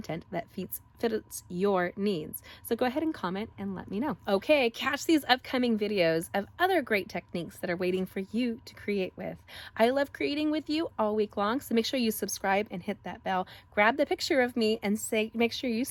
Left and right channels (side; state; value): both; identical; correlation 1.00